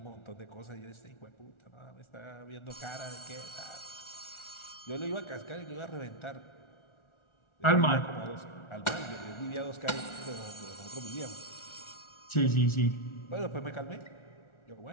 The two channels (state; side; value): late; right; 1.4 ms